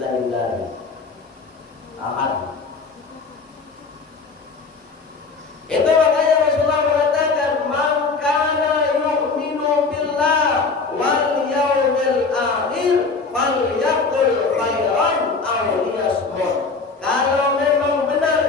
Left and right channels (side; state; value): right; quieter; 4.4 dB